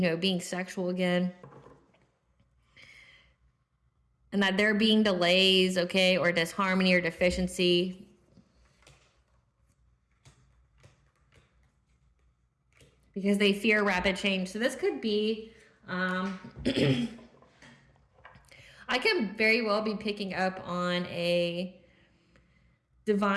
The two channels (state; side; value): identical; both; correlation 1.00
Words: being sexual again. And that there being delays, okay, or disharmony or deficiency. Because they fear rapid change. So this could be, I can very well be picking up on a